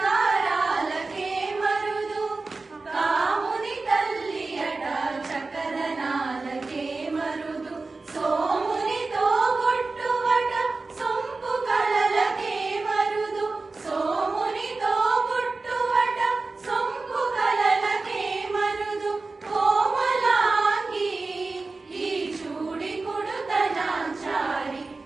మరుదు కాముని తల్లి అట చక్కదనాలకే మరుదు సోమునితో బొట్టువట సొంపు కళలకే మరుదు సోమునితో బొట్టువట సొంపు కళలకే మరుదు కోమలాంగి ఈ చూడి కుడుతనాంచారి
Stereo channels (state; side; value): quieter; left; 3.7 dB